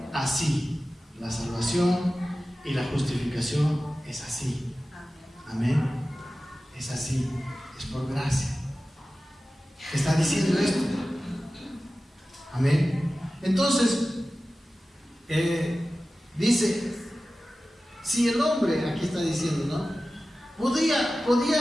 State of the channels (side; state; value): both; normal; correlation 0.95